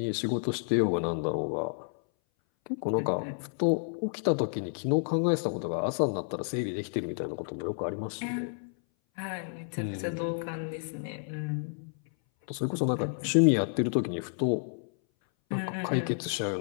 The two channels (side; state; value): right; silent; 58 dB below the other